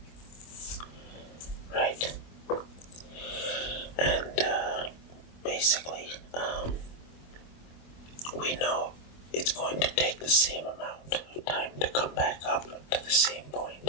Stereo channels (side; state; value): right; late; 25 ms